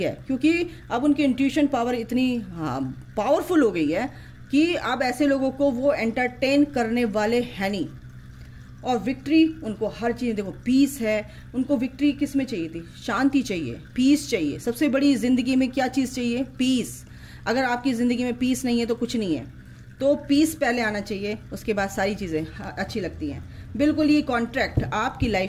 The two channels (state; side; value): identical; both; correlation 1.00